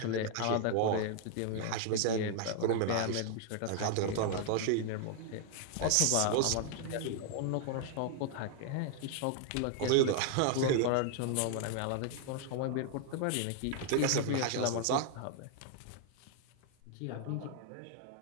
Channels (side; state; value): both; different; correlation 0.00